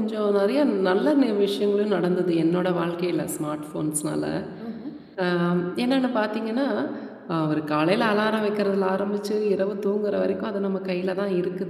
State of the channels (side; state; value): both; identical; correlation 1.00